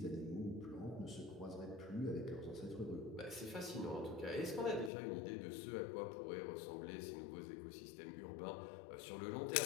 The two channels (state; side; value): drops out; right; at 4.9 s